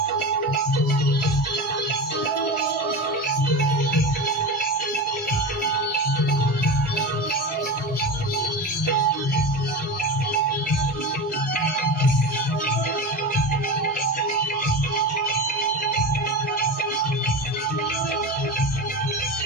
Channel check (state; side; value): normal; both; correlation 0.25